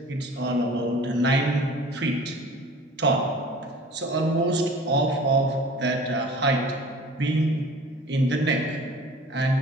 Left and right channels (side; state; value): both; normal; correlation 0.44